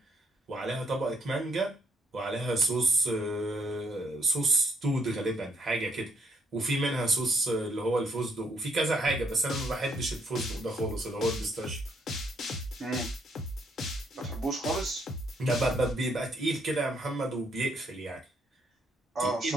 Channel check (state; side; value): normal; both; correlation 0.72